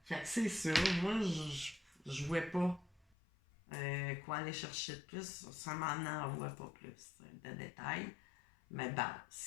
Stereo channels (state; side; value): drops out; right; at 3.1 s